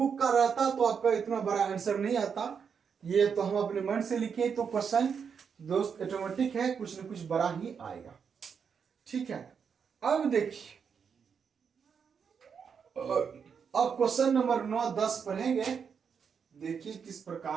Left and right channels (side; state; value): left; quieter; 6.6 dB